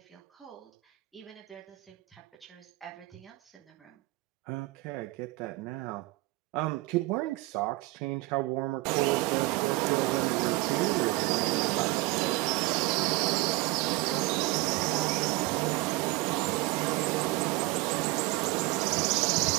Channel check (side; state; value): left; quieter; 20.9 dB